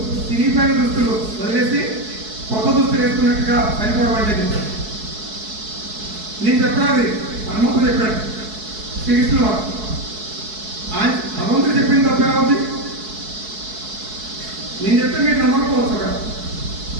చినిగిపోయిన దుస్తులు వదిలేసి కొత్త దుస్తులు వేసుకున్నట్టుగా చనిపోవడం అంటే చెప్పాడు. నేను చెప్పాలి, హనుమంతుడు చెప్పాడు, శ్రీకృష్ణుడు వారు. ఆయన భగవంతుడు చెప్పింది తప్పే అవుతుంది. నేను చెప్తే మీరు నమ్మకపోవచ్చు కదా.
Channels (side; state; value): left; late; 4.6 ms